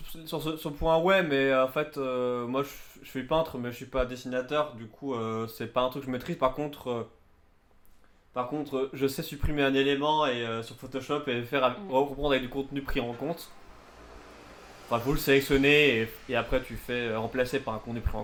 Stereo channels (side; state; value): both; identical; correlation 1.00